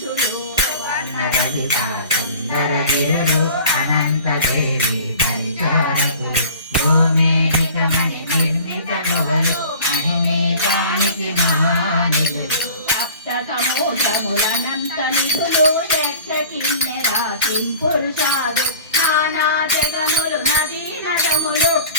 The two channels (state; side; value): inverted; both; correlation -0.43